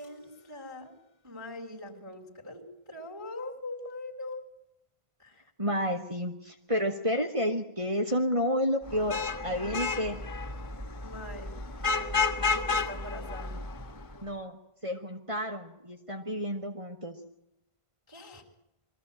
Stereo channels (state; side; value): late; left; 1.5 ms